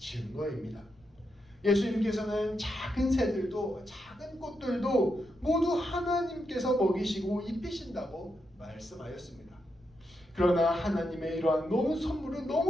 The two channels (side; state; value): left; noise; rumble, 30 dB below the sound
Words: 예수님께서는 작은 새들도 작은 꽃들도 모두 하나님께서 먹이시고 입히신다고 말씀하였습니다. 그러나 하나님의 이러한 선물은